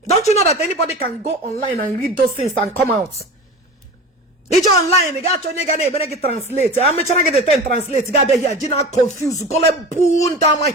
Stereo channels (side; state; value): both; normal; correlation 0.32